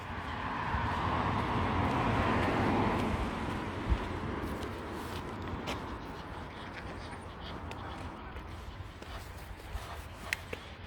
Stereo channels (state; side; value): identical; both; correlation 1.00